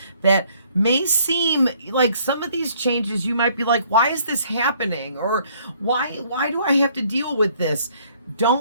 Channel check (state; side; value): inverted; both; correlation -0.63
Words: that may seem like, some of these changes you might be like, why is this happening? Or why do I have to deal with this?